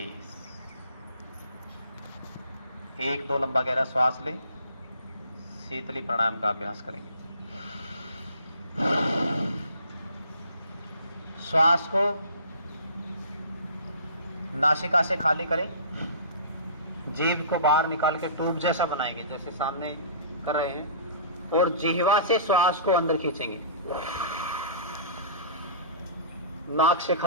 1-2 लंबा गहरा श्वास लें। शीतली प्राणायाम का अभ्यास करेंगे। श्वास को नासिका से खाली करें। जीभ को बाहर निकाल के ट्यूब जैसा बनाएंगे, जैसे सामने कर रहे हैं, और जिह्वा से श्वास को अंदर खींचेंगे। नाक से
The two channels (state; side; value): inverted; both; correlation -0.44